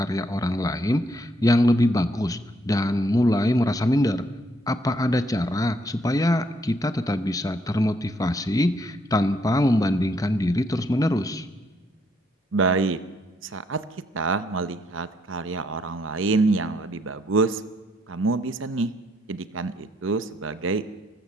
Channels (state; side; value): normal; both; correlation 0.71